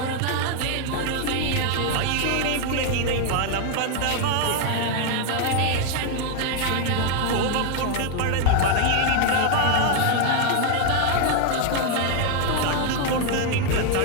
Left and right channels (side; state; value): both; different; correlation 0.01